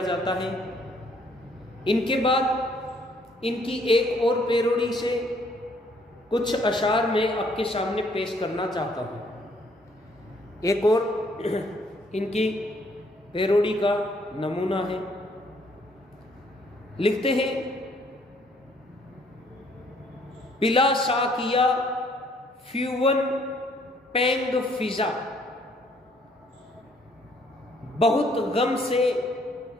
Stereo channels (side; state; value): both; normal; correlation 0.65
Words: जाता है। इनके बाद इनकी एक और पैरोडी से कुछ अशार मैं आपके सामने पेश करना चाहता हूँ। एक और इनकी पैरोडी का नमूना है। लिखते हैं पिला साकिया फ्यूवन पेंग फिजा, बहुत गम से